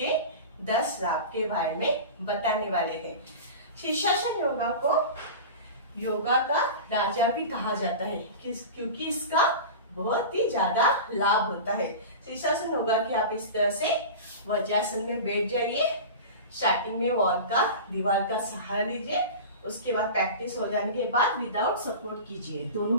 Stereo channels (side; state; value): both; inverted; correlation -0.30